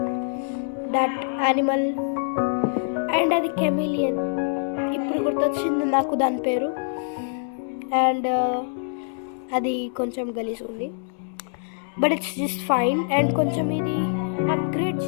దట్ యానిమల్ అండ్ అది కెమిలియన్, ఇప్పుడు గుర్తొచ్చింది నాకు దాని పేరు. అండ్ అది కొంచెం గలీజ్ ఉంది, but it's just fine. And కొంచెం ఇది అప్గ్రేడ్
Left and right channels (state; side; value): silent; right; 62 dB below the other